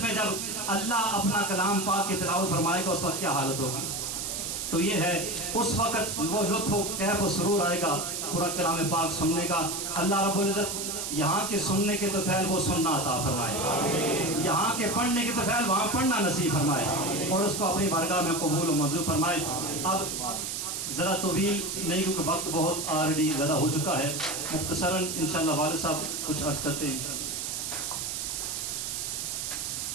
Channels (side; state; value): right; noise; hiss, 3 dB below the sound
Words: میں جب اللہ اپنا کلام پاک کی تلاوت فرمائے گا اس وقت کیا حالت ہوگی۔ تو یہ ہے اس وقت وہ لطف و کیف و سرور آئے گا پورا کلام پاک سننے کا۔ اللہ رب العزت یہاں کے سننے کے تو فعل وہ سننا عطا فرمائے، یہاں کے پڑھنے کے تو فعل وہاں پڑھنا نصیب فرمائے، اور اس کو اپنی بارگاہ میں قبول و منظور فرمائے۔ اب ذرا طویل نہیں کیونکہ وقت بہت آلریڈی زیادہ ہو چکا ہے، مختصراً انشاءاللہ والد صاحب کچھ عرض کرتے ہیں انشاءاللہ۔